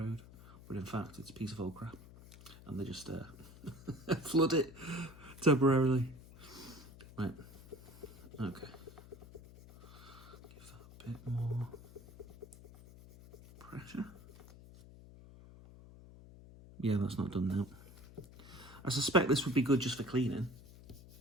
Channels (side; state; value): left; noise; hum, 18 dB below the sound